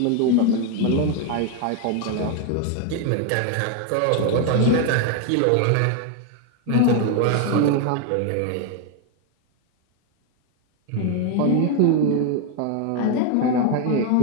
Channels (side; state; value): both; different; correlation 0.01